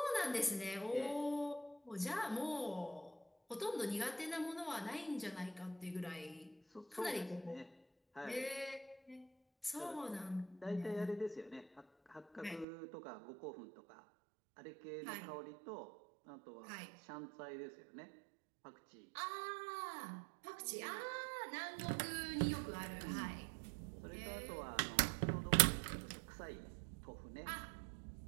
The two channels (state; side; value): drops out; left; at 12.7 s